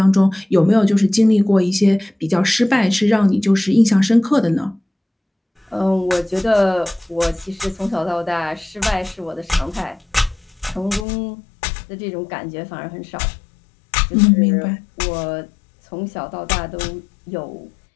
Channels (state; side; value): drops out; right; at 11.1 s